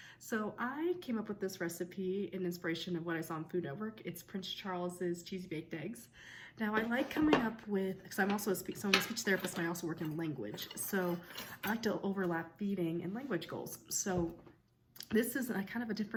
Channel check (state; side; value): identical; both; correlation 1.00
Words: So I came up with this recipe in inspiration of what I saw on Food Network. It's Prince Charles's cheesy baked eggs. Now I like coming up with, because I'm also a speech therapist and I also work in language. So I like to overlap feeding and language goals. So this is a kind of a